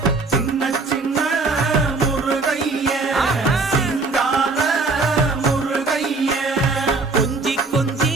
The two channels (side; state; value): left; quieter; 3.7 dB